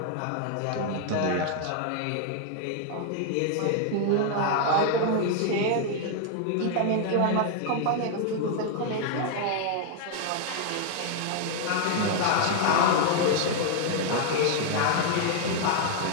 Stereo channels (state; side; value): different; both; correlation 0.00